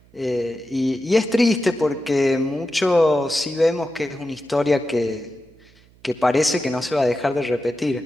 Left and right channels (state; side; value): noise; right; hum, 29 dB below the sound